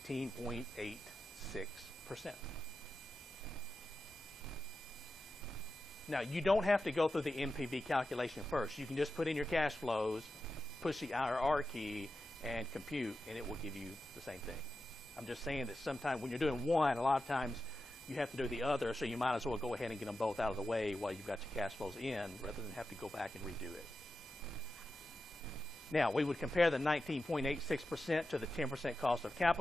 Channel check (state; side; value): normal; both; correlation 0.91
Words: Now, you don't have to go through the NPV calculation first. You can just put in your cash flows, push the IRR key, and compute, and it will give you the same thing. I'm just saying that sometimes when you're doing one, a lot of times you have to do the other, so you might as well go ahead and get them both out of the way while you've got your cash flows in, rather than have to go back and redo it. Now, we would compare the 19.86% to the 10% cost of